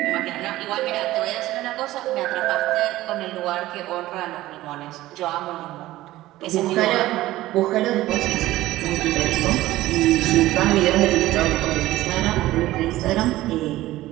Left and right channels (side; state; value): left; quieter; 16.3 dB